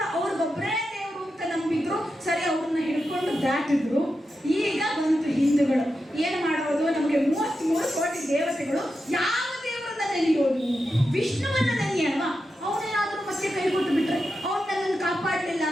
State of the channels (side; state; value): both; normal; correlation 0.89